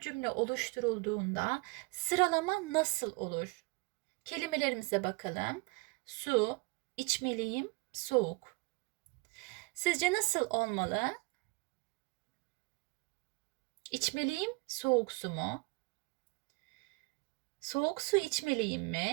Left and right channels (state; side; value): quieter; left; 28.3 dB